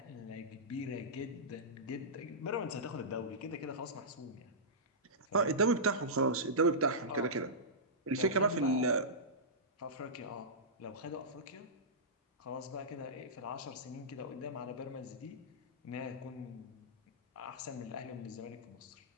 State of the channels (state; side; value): normal; both; correlation -0.16